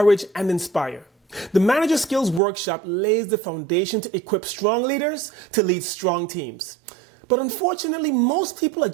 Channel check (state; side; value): drops out; left; at 2.4 s